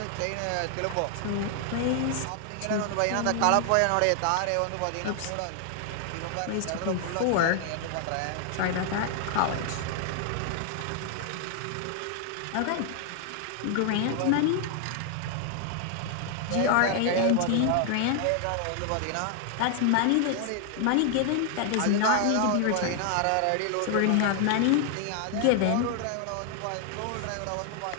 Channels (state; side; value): different; both; correlation 0.00